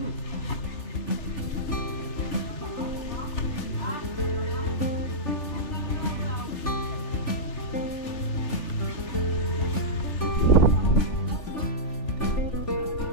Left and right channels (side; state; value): right; late; 3.4 ms